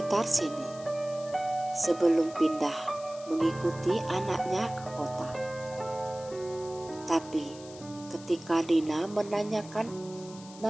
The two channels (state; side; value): noise; left; hiss, 18 dB below the sound